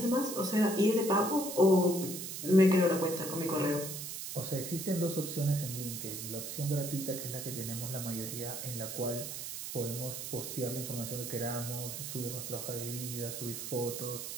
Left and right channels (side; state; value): right; noise; hiss, 6 dB below the sound